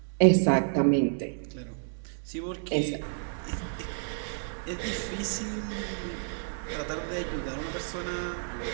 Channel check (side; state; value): left; silent; digital silence